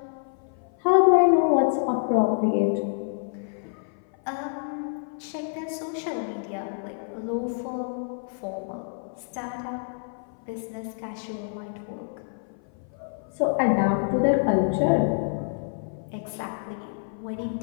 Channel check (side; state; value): right; silent; 56 dB below the other